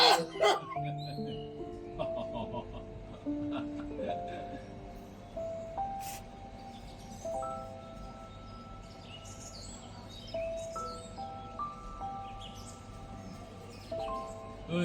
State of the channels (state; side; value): identical; both; correlation 1.00